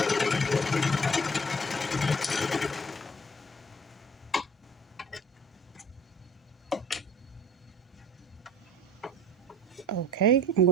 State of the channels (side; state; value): both; normal; correlation 0.47